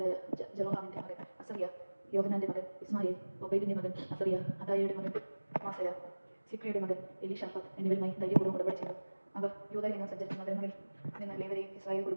ജെറോഹാമിന്റെ മകൻ അസറിയ, യോഹനാന്റെ മകൻ ഇസ്മായേൽ, ഒബൈദിന്റെ മകൻ അസറിയ, അദായയുടെ മകൻ മാസയ, സിക്രിയുടെ മകൻ എലീഷാഫാത്ത് എന്നിവരുമായി ധൈര്യപൂർവ്വം ഉടമ്പടി ചെയ്തു. അവർ യൂദയിൽ നിന്ന് സഞ്ചരിച്ച നഗരങ്ങളിൽ നിന്ന് ലേവ്യരെയും ഇസ്രായേൽ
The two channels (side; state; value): both; inverted; correlation -1.00